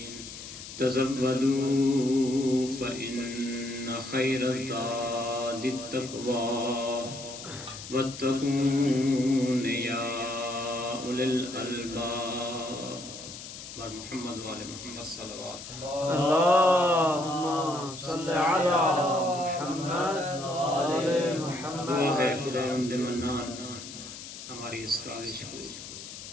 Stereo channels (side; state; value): left; noise; hiss, 12 dB below the sound